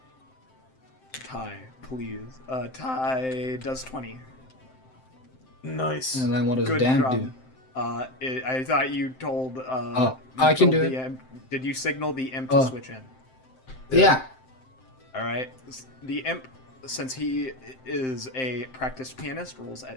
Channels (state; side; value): late; right; 7.7 ms